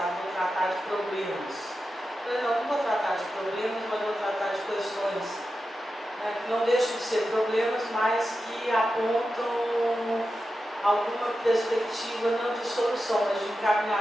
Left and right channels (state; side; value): normal; both; correlation 0.91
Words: em tratar de problemas. Eu não vou tratar de problemas, mas vou tratar de questões, né, que não deixam de ser problemas, mas que apontam alguma perspectiva, não de solução, mas de